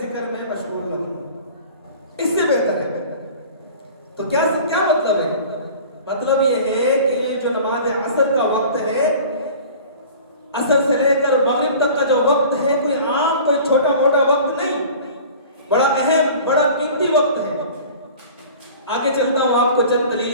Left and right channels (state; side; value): inverted; both; correlation -0.43